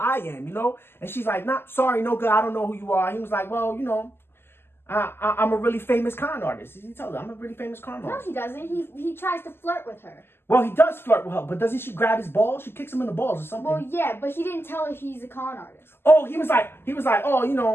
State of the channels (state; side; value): late; right; 0.11 ms